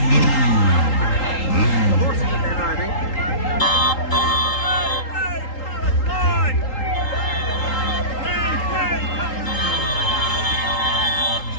The horse is a better, I think.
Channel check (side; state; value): right; late; 3.8 ms